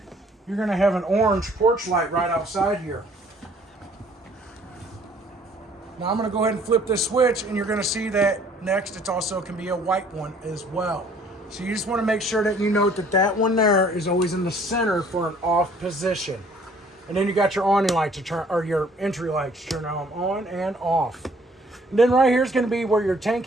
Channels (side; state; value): both; normal; correlation 0.58